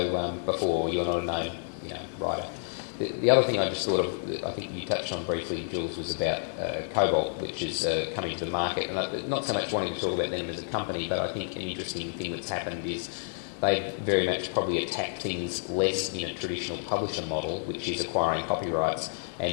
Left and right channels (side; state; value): right; silent; digital silence